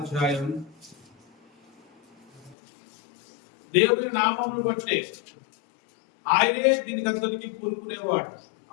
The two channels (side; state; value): right; drops out; at 2.6 s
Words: దేవుని నామమును బట్టే ఆయనే దీనికి అంతటికి పూనుకునేవాడు,